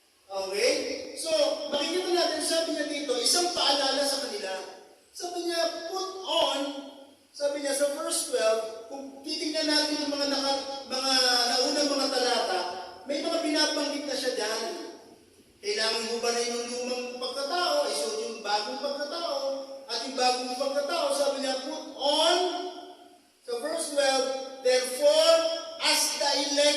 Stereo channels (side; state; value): both; identical; correlation 1.00